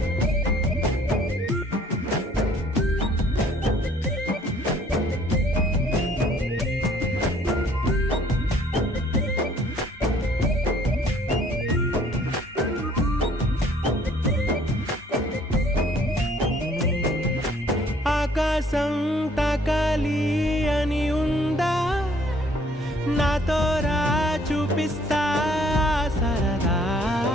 ఆకాశం తాకాలి అని ఉందా నాతో రా చూపిస్తా సరదా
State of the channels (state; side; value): normal; both; correlation 0.60